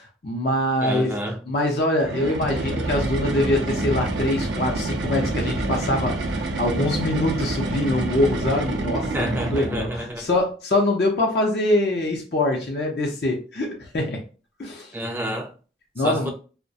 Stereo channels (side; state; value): both; normal; correlation 0.46